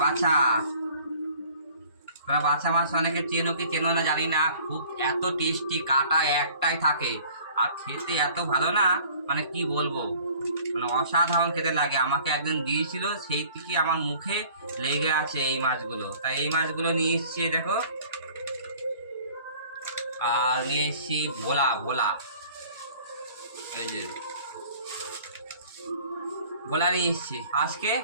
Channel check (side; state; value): both; inverted; correlation -0.51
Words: বাছা। বাছা মাছ অনেকে চেনো কি চেনো না জানি না, খুব এত টেস্টি, কাটা একটাই থাকে আর খেতে এত ভালো না, মানে কি বলবো, মানে অসাধারণ খেতে লাগে। আমাকে একজন দিয়েছিল, সেই থেকে আমার মুখে লেগে আছে এই মাছগুলো, তাই এই মাছগুলো নিয়ে এসেছি। দেখো, আর নিয়ে এসেছি ভোলা ভোলা। এই যে ভোলা নিয়ে এসেছি আজকে।